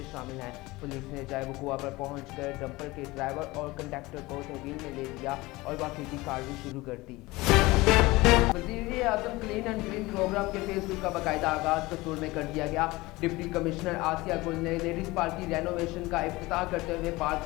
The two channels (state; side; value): quieter; right; 20.9 dB